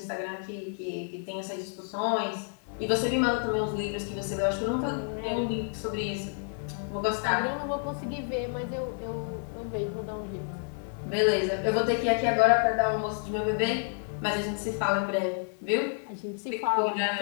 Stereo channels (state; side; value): silent; right; 58 dB below the other